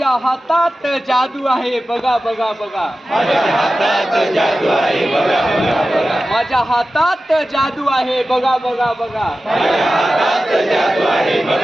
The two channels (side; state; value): both; normal; correlation 0.94